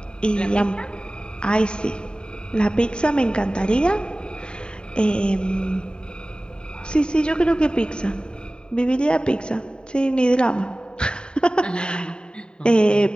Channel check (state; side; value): late; right; 0.049 ms